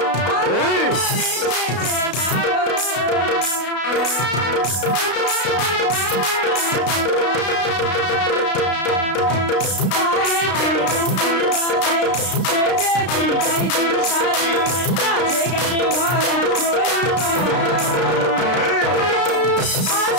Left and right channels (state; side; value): late; right; 33 ms